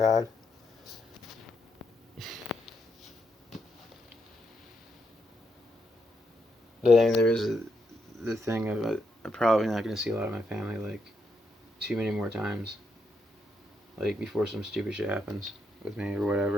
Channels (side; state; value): both; normal; correlation 0.79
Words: But I mean, there is the thing of I'm probably not going to see a lot of my family too many more times. Before some stupid shit happens with me or